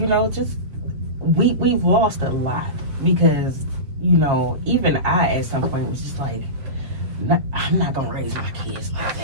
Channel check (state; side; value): late; left; 7.2 ms